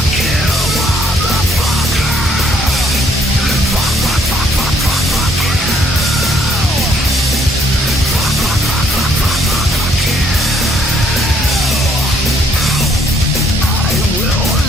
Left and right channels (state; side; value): normal; both; correlation 0.67